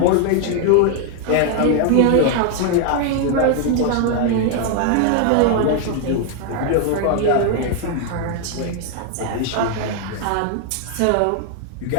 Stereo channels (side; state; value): both; different; correlation 0.00